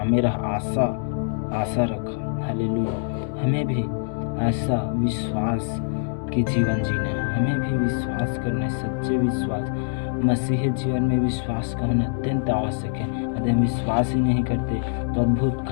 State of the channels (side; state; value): right; silent; 62 dB below the other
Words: रहा, आशा रखा। हालेलुया। हमें भी ऐसा विश्वास के जीवन जीना है। हमें भी विश्वास करना है, सच्चे विश्वास। मसीही जीवन में विश्वास का होना अत्यंत आवश्यक है। यदि हम विश्वास ही नहीं करते तो अद्भुत